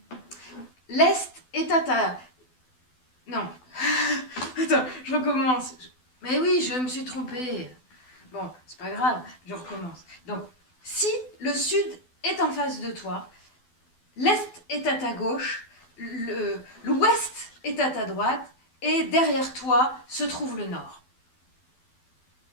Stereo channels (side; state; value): right; late; 12 ms